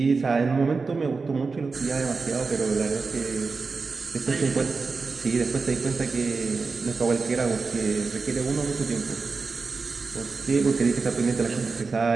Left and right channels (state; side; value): quieter; left; 4.4 dB